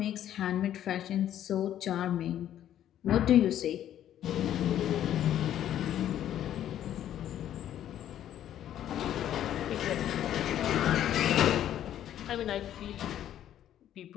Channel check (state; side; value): quieter; right; 11.2 dB